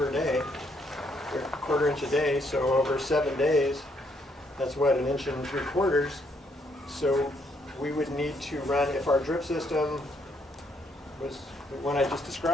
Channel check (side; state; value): both; normal; correlation 0.72